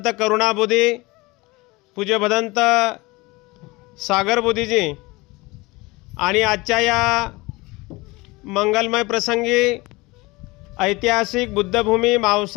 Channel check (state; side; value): quieter; right; 23.1 dB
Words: करुणा बुद्धी, पूज्य भदंत सागर बुद्धीजी आणि आजच्या या मंगलमय प्रसंगी ऐतिहासिक बुद्धभूमी